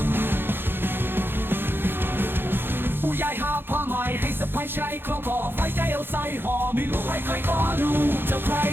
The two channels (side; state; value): left; late; 0.10 ms